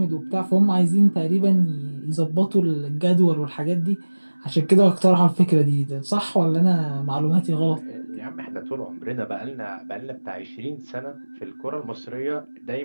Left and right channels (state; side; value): inverted; both; correlation -1.00